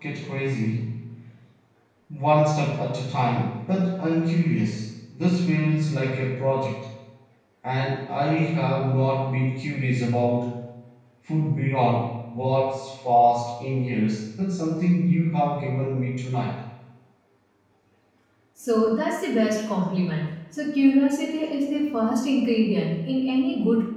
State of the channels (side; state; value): both; identical; correlation 1.00